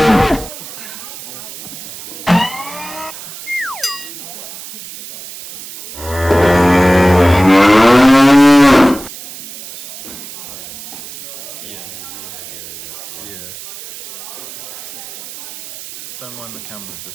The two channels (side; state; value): right; noise; hiss, 13 dB below the sound